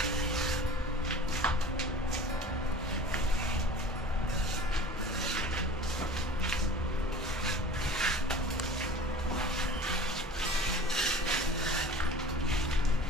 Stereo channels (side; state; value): both; normal; correlation 0.41